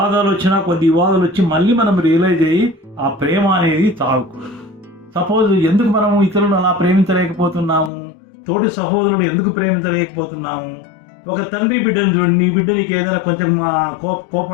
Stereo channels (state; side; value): drops out; right; at 7.9 s